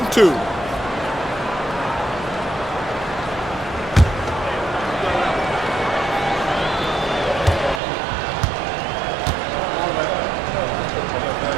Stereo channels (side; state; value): left; drops out; at 7.8 s